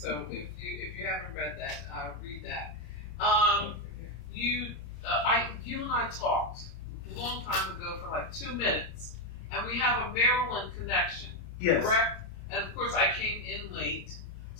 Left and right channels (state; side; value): late; right; 28 ms